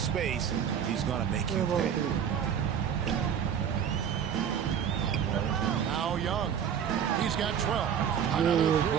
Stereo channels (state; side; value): quieter; left; 8.3 dB